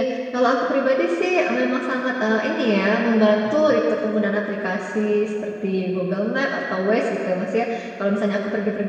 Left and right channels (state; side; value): identical; both; correlation 1.00